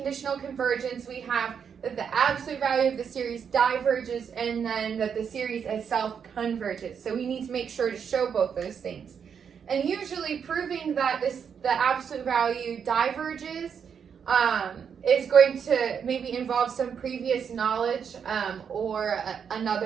convergence, we have that the absolute value of the series diverges and then that the series itself converges. So we need to make sure to show both those things. And usually proving that the absolute value diverges is going to maybe involve some previous knowledge or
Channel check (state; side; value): quieter; left; 7.2 dB